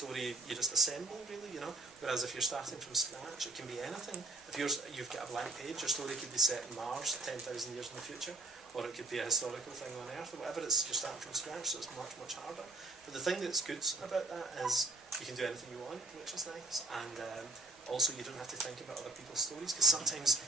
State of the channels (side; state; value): left; quieter; 3.3 dB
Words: you just assemble, really, you know. Whereas if you're starting from scratch, it can be anything. If you've got a blank page, your story could be set in Mars 10,000 years in the future, or it could be a historical thing on Earth, or whatever. You're starting from scratch, so it's much, much harder. But the thing that's good about that is you can do anything you want, which is nice, and also you don't have to think about other people's stories, because sometimes